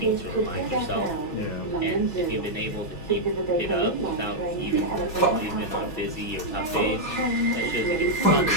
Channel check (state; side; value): late; right; 6.2 ms